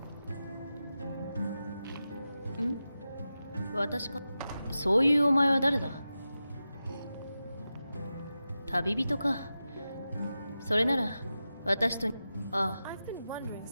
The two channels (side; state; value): both; inverted; correlation -0.92